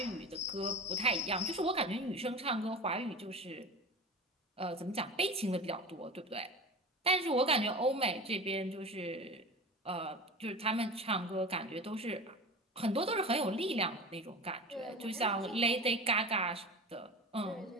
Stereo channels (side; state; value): both; normal; correlation 0.32